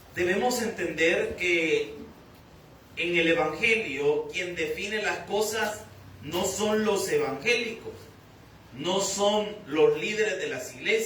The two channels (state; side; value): identical; both; correlation 1.00